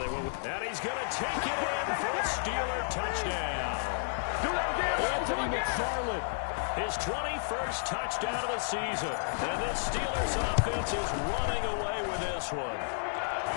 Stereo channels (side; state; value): right; silent; digital silence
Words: will. And he's going to take it in for a Steeler touchdown. Anthony McFarland, his 21st touchdown of the season. And this Steelers offense is running away with this one.